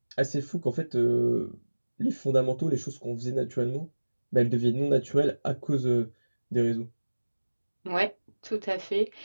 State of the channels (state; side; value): inverted; both; correlation -1.00